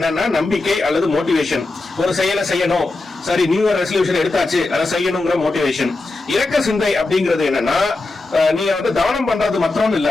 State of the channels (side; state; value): right; quieter; 3.3 dB